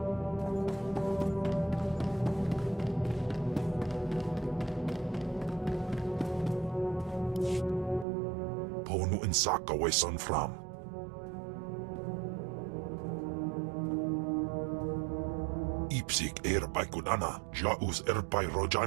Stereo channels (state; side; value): drops out; left; at 8.1 s